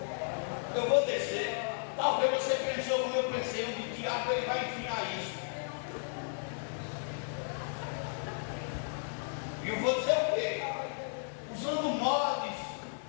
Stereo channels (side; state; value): right; silent; 55 dB below the other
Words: Eu vou descer. Talvez você pensou como eu pensei, o diabo ele vai enfiar isso. E eu vou dizer o quê? Usando mods.